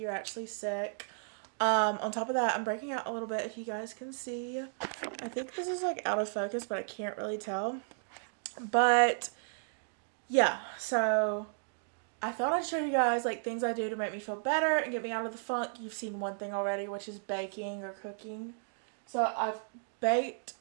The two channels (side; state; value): left; silent; digital silence